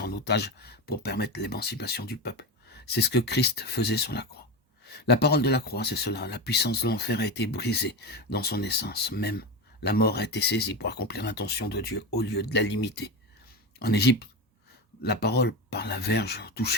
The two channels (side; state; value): both; normal; correlation 0.20